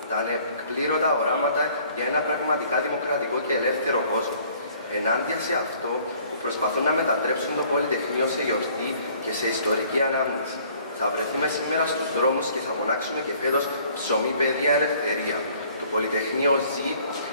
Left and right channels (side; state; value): both; inverted; correlation -0.57